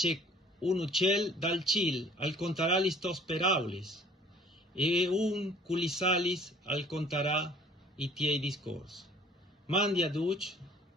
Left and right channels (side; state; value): both; normal; correlation 0.53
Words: un uccel dal cil al contarà li sto speraulis, e un culisalis al contarà i tiei discorsi. Mandi a duc